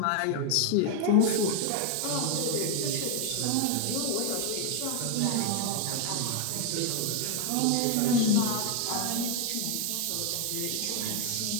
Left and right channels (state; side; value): different; both; correlation 0.01